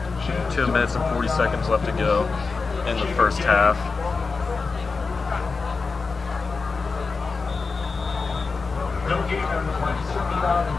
2 minutes and 40 seconds left to go. in the first half.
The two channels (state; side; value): quieter; right; 4.4 dB